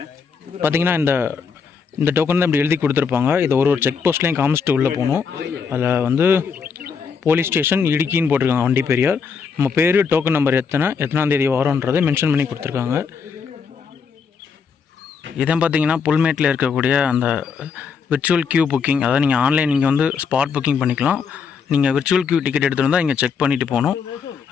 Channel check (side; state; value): right; quieter; 5.9 dB